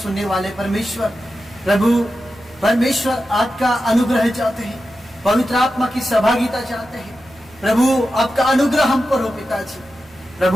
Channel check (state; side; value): noise; right; hum, 30 dB below the sound